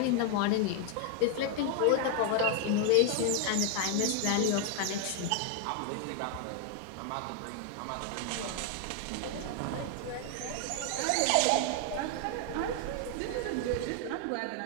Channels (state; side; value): different; both; correlation 0.00